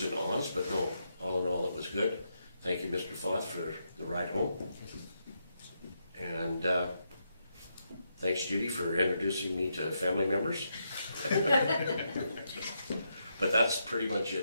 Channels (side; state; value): both; inverted; correlation -0.81